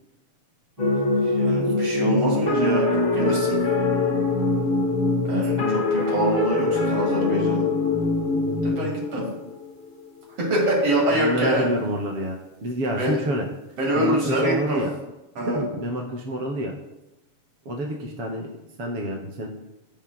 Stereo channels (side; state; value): left; late; 7.1 ms